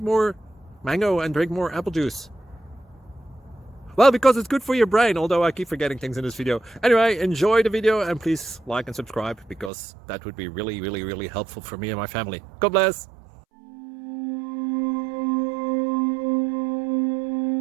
more mango and drink more apple juice? Well, because it's good for your brain, although I keep forgetting things in this video. Anyway, enjoy the video and please like and subscribe, because that would be really helpful for me and my family. God bless.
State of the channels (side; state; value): left; drops out; at 9.7 s